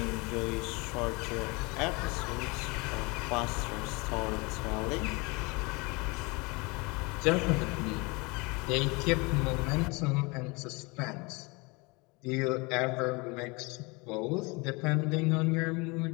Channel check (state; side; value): quieter; right; 27.3 dB